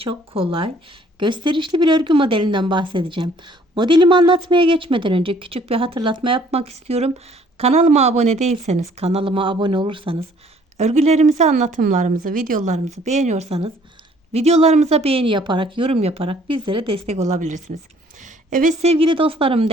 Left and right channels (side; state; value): both; normal; correlation 0.59